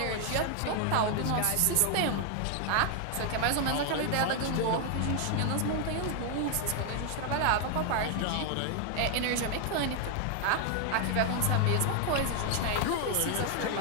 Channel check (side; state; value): both; different; correlation 0.00